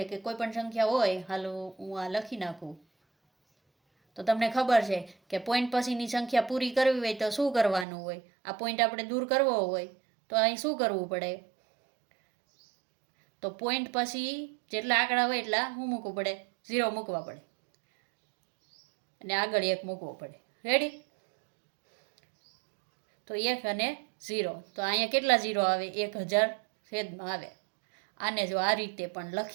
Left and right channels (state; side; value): drops out; left; at 7.9 s